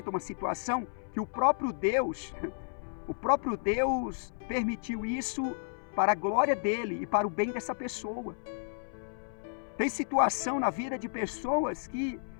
uma situação que o próprio Deus permitiu isso para a glória dele e para o bem dessa pessoa. Tem situação na vida de pessoas que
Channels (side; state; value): right; silent; 56 dB below the other